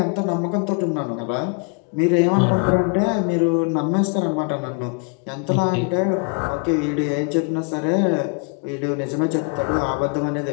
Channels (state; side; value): quieter; right; 36.3 dB